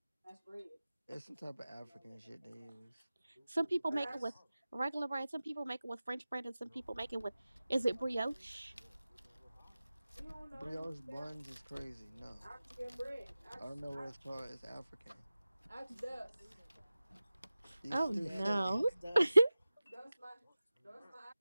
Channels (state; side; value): inverted; both; correlation -0.96